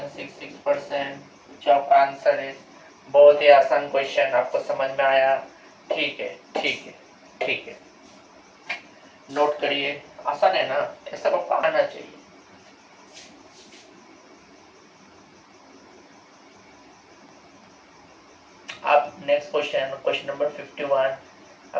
जो आपका आंसर है। बहुत ही आसान क्वेश्चन, आपको समझ में आया? ठीक है, ठीक है, ठीक है, नोट करिए। आसान है ना? ऐसा आपको आना चाहिए। आप नेक्स्ट क्वेश्चन, क्वेश्चन नंबर 51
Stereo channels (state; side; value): identical; both; correlation 1.00